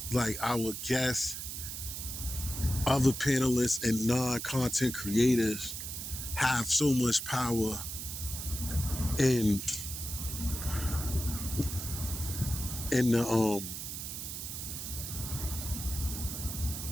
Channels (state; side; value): noise; right; hiss, 6 dB below the sound